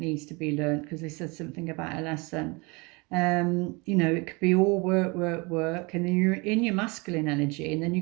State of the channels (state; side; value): quieter; left; 27.8 dB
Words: to be learned, because they said something about a lesson. You know, it could be all work, and then you're in your masculine energy, and then